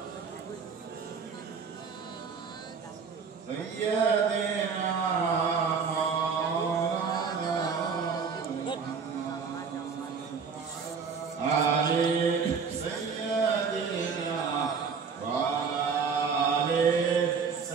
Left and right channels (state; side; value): quieter; left; 5.7 dB